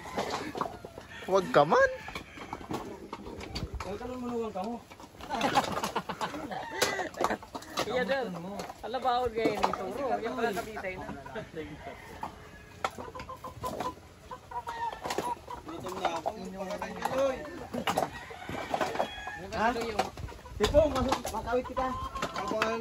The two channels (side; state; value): both; identical; correlation 1.00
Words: Huwag ka man. Huwag ka man manugang ka mo. Iya dal. Ala ba ako gaya nito bro? Yung pala kabitay na. Gutom na ako. Ha? Tipong, makawit kita. Kapan?